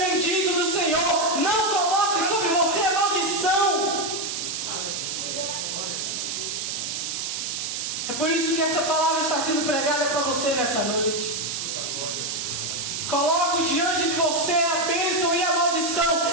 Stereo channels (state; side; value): noise; right; hiss, 3 dB below the sound